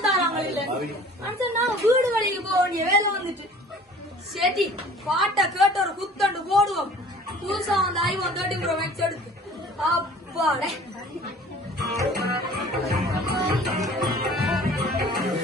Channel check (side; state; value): both; normal; correlation 0.48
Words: தராங்க. இல்ல நான் வீடு வழிக்கு போக வேண்டிய வேலை வந்துட்டு சரி பாட்டை கேட்டு ஒரு குத்தண்டு போடுவோம். புதுசா வந்து ஐவன் 30 மேக்ஸ் எடுத்து அப்பாடே